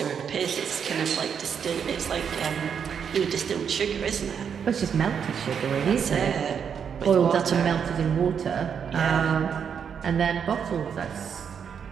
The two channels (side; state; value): left; quieter; 7.3 dB